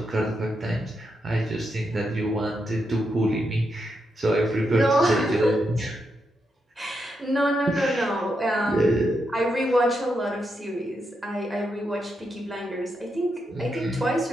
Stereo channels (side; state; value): both; normal; correlation 0.83